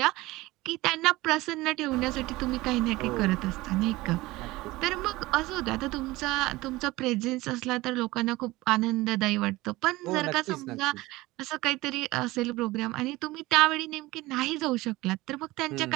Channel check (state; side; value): quieter; left; 19.7 dB